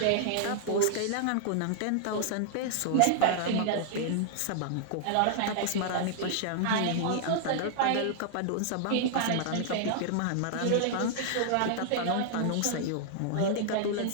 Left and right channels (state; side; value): different; both; correlation -0.01